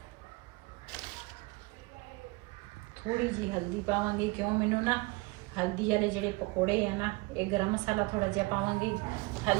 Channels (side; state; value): left; quieter; 23.9 dB